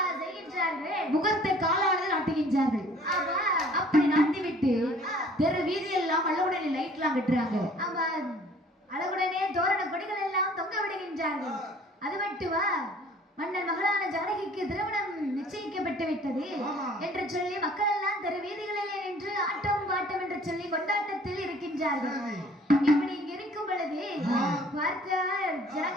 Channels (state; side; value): normal; both; correlation 0.54